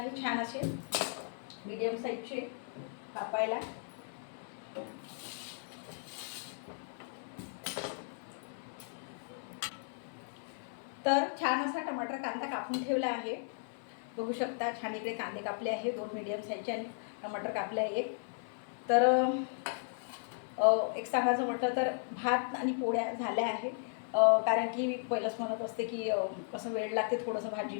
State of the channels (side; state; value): right; silent; 54 dB below the other